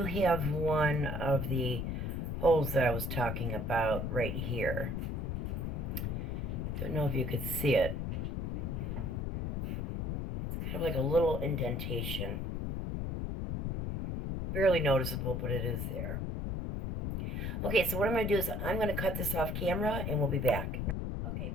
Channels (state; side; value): noise; left; rumble, 2 dB below the sound